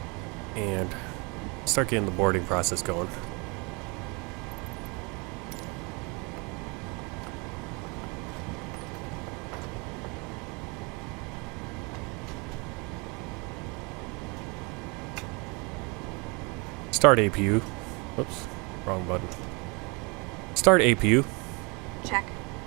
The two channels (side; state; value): left; quieter; 29.5 dB